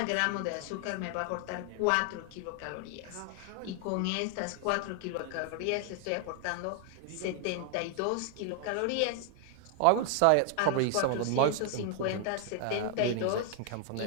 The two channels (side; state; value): both; different; correlation 0.00